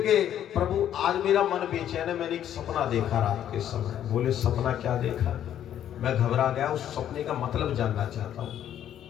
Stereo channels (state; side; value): quieter; right; 10.6 dB